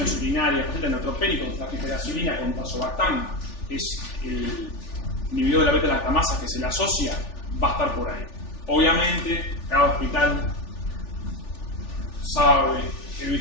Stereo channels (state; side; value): late; right; 3.4 ms